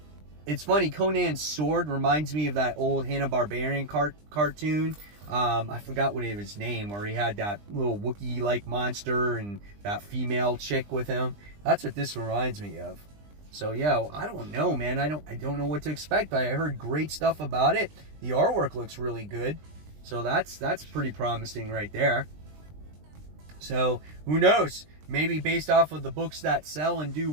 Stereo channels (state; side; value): late; left; 20 ms